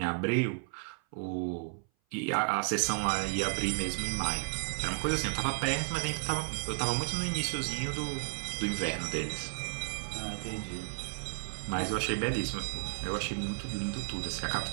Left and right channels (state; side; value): silent; left; 56 dB below the other